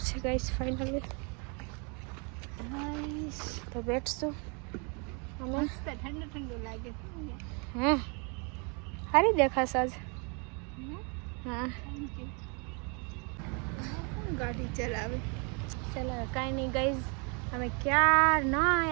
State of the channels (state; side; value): quieter; left; 34.5 dB